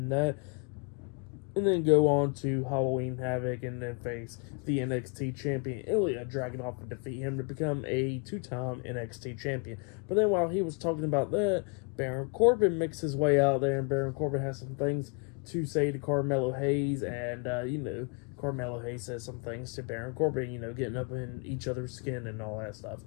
that. And then go on to Halloween Havoc and then face the NXT champion Ilya Dragunov and defeat him to become a two-time NXT champion. But then while he was talking about that, Baron Corbin makes his way out there, and Baron Corbin has some things to say to Carmelo Hayes, and, Carmelo Hayes says some things to Baron Corbin, getting up in each other's skin and all that stuff.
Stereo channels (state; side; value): quieter; right; 35.3 dB